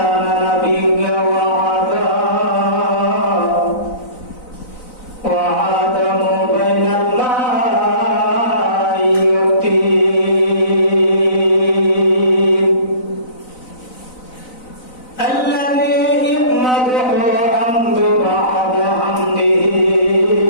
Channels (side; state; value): right; late; 4.0 ms